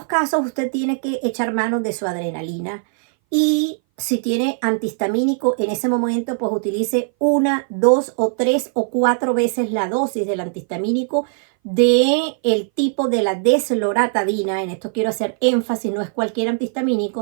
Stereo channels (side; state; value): left; silent; 60 dB below the other